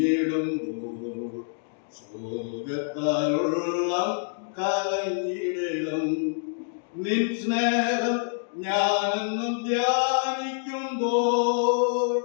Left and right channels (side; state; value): right; silent; digital silence